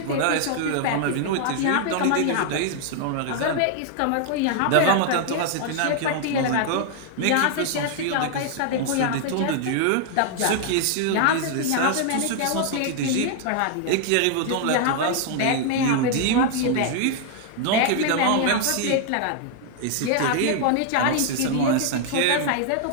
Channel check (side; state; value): both; different; correlation 0.00